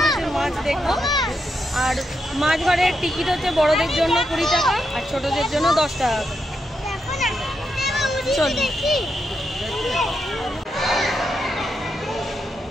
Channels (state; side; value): normal; both; correlation 0.83